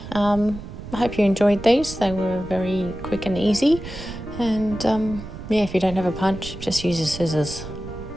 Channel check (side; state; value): right; noise; rumble, 11 dB below the sound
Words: I hope you enjoyed these. They were very quick and easy. And yeah, if you don't have a punch, just use your scissors.